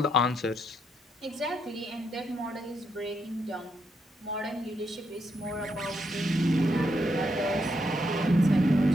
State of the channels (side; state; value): both; normal; correlation 0.78